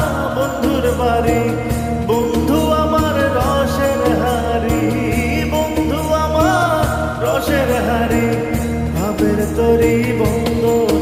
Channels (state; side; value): identical; both; correlation 1.00